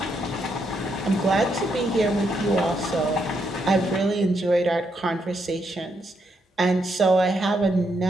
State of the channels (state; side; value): normal; both; correlation 0.78